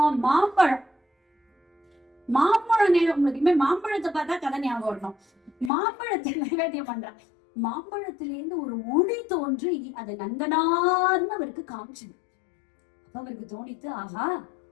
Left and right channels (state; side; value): drops out; right; at 5.7 s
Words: மாம்பழம். மாம்பழம் உங்களுக்கு மாம்பழத்தை பார்த்தா கதை ஞாபகம் வரணும். மாம்பழத்தை நைவேத்தியம் பண்றா. மாம்பழத்திலேருந்து ஒரு ஒளி தோன்றி அது நந்தனார்னு அவருக்கு காமிச்சுது. அப்ப அவருக்கு தோணித்து, ஆஹா